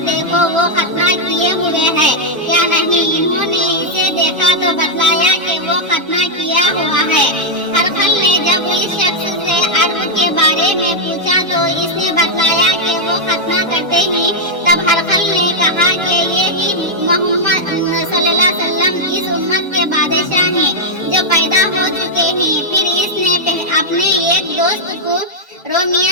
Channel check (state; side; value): normal; both; correlation -0.03